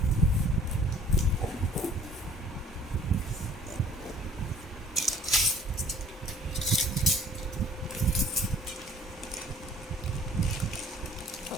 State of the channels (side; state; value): both; normal; correlation 0.53